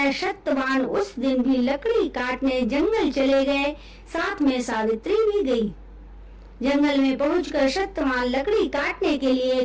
सत्यवान उस दिन भी लकड़ी काटने जंगल चले गए। साथ में सावित्री भी गई। जंगल में पहुंचकर सत्यवान लकड़ी काटने के लिए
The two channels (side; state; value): both; identical; correlation 1.00